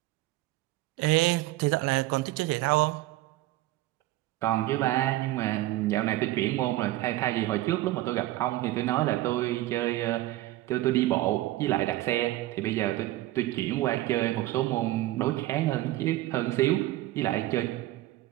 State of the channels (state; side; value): quieter; left; 16.6 dB